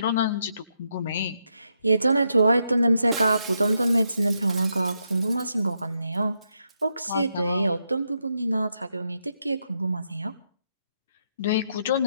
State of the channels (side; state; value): both; inverted; correlation -0.81